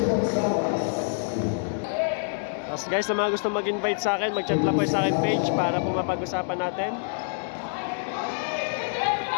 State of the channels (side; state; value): right; silent; digital silence